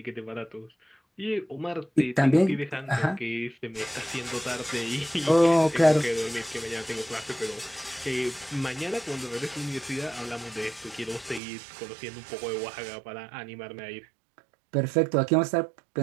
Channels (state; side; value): drops out; left; at 11.4 s